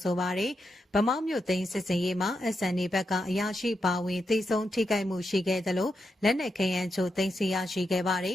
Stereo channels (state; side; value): normal; both; correlation 0.85